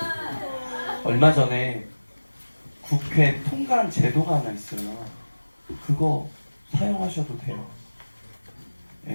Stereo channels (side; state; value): both; inverted; correlation -1.00